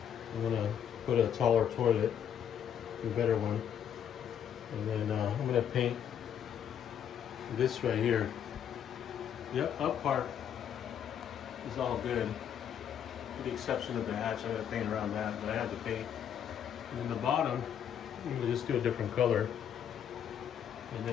I'm gonna put a taller toilet, a better one. And then I'm gonna paint this right here. The up part is all good, with the exception of the hatch. I gotta paint around that, but I had to paint. And then the bottom, I'm gonna just do a different color. And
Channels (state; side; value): quieter; right; 8.9 dB